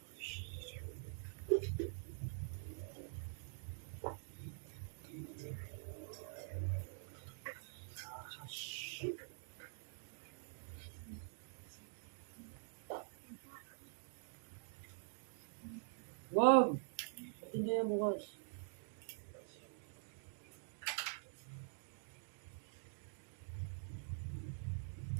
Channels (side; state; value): left; silent; digital silence